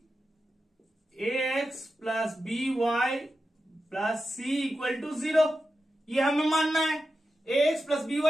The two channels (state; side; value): normal; both; correlation 0.91